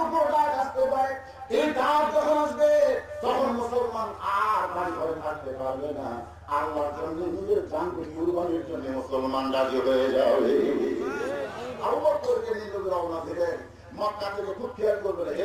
উপর ডাক আসতে পারে। এই ডাক যখন আসবে তখন মুসলমান আর বাড়ি ঘরে থাকতে পারবে না, আল্লাহর জন্য নিজের জানকে কুরবানির জন্য মুসলমান রাজি হয়ে যাবে। আবু বকরকে নিয়ে রওনা দিলেন মক্কা থেকে। খুব খেয়াল করবেন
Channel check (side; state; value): both; identical; correlation 1.00